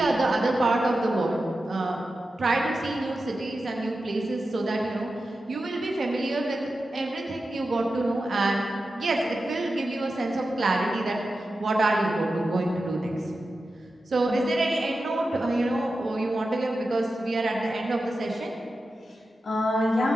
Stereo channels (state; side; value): normal; both; correlation 0.92